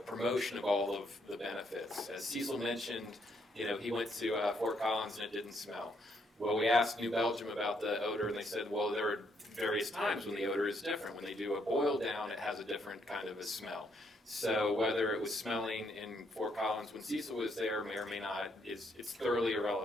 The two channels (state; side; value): normal; both; correlation 0.73